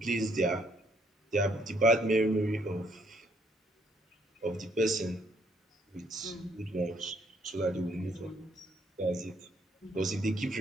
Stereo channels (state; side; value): normal; both; correlation 0.68